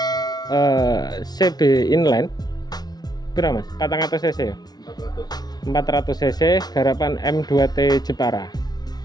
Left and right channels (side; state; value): right; late; 0.19 ms